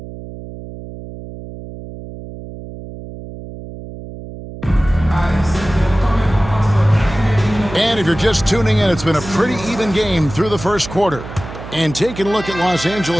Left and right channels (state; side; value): noise; right; hum, 13 dB below the sound